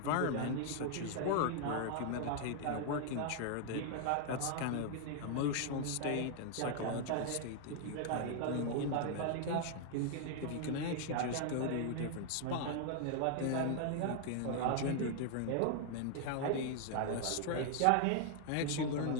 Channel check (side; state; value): both; different; correlation 0.00